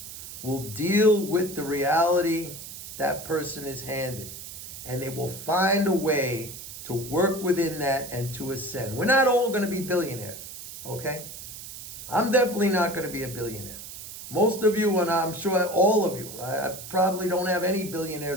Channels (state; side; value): noise; right; hiss, 12 dB below the sound